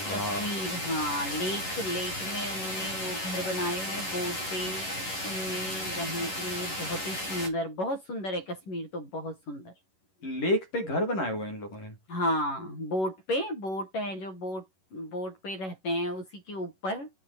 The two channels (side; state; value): right; late; 11 ms